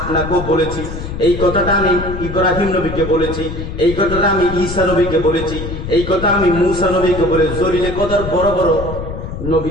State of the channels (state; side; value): noise; left; rumble, 7 dB below the sound